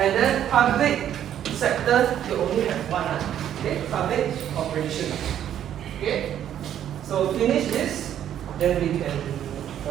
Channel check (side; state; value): left; quieter; 10.5 dB